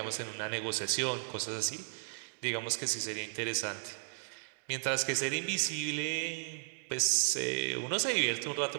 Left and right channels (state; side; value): silent; left; digital silence